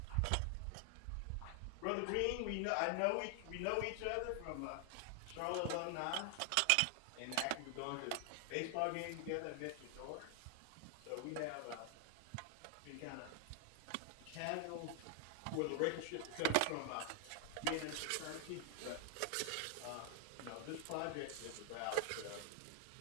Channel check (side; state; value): both; different; correlation 0.00